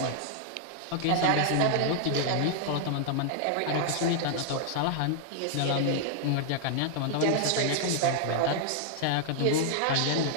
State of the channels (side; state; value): both; different; correlation 0.00